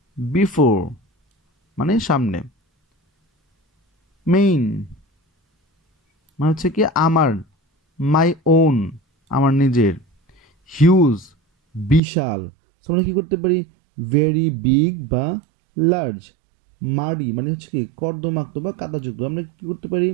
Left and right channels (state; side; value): drops out; left; at 12.0 s